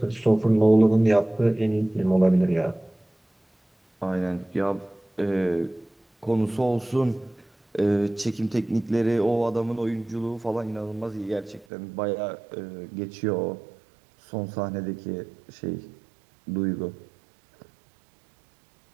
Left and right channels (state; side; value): drops out; left; at 11.7 s